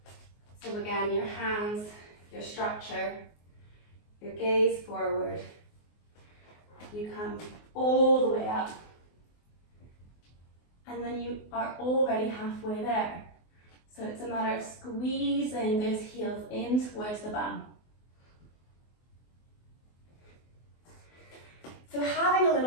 So again, your hands, your structure, your gaze forward. You come all the way up, and then you are already halfway there. So it's a matter of squeezing those heels in towards the bum. So having a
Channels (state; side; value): late; right; 24 ms